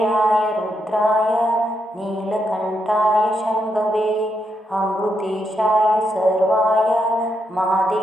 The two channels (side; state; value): both; normal; correlation 0.81